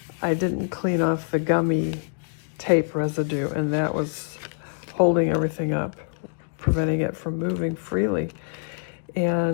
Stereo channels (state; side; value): silent; right; digital silence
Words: I didn't clean off the gummy tape residue, and that was holding everything up, preventing it from moving freely.